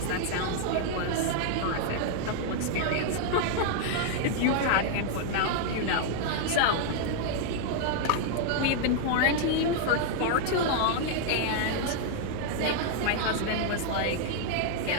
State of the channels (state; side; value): different; both; correlation -0.01